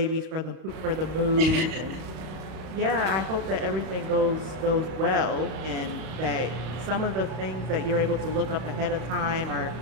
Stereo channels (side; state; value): left; late; 32 ms